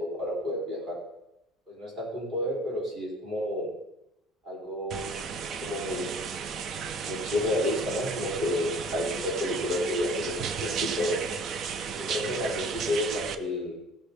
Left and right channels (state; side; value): normal; both; correlation 0.49